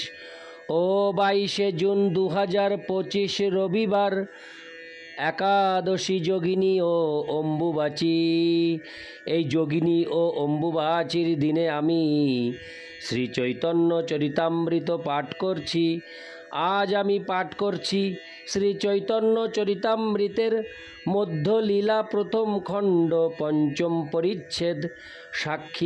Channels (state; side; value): identical; both; correlation 1.00